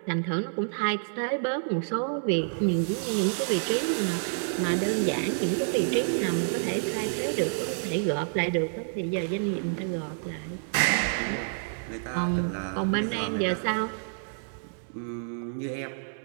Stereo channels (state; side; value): silent; left; digital silence